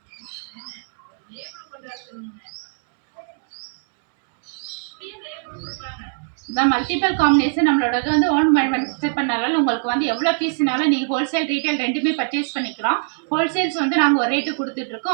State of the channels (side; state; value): left; silent; digital silence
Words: இந்த மல்டிபிள் காம்பினேஷன் நம்மளோட வந்து ஓன் செட் பண்ணாலும் உங்களுக்கு வந்து எவ்வளோ பீஸ்னாலும் நீங்கள் ஹோல்சேல் ரீட்டைல் ரெண்டுமே பர்ச்சேஸ் பண்ணிக்கலாம். ஹோல்சேல்ஸ் வந்து நாங்கள் ஒரு ரேட்டு